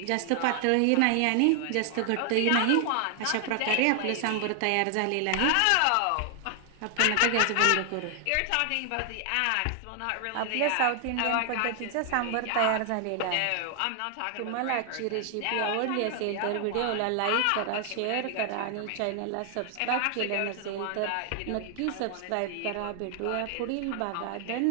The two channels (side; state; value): both; different; correlation 0.00